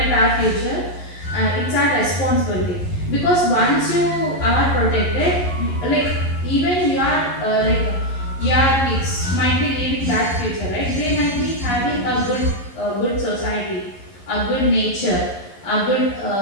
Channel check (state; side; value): late; right; 11 ms